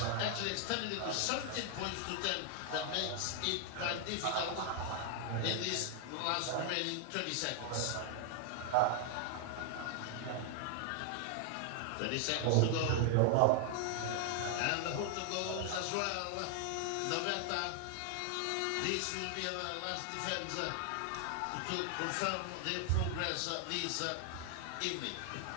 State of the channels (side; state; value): both; different; correlation 0.00